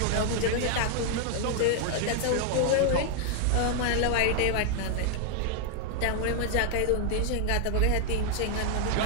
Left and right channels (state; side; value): different; both; correlation 0.00